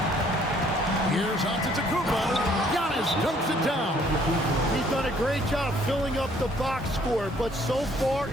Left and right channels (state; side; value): normal; both; correlation 0.62